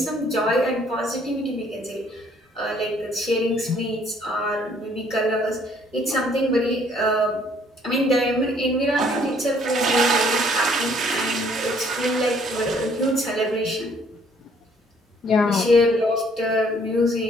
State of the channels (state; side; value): normal; both; correlation 0.62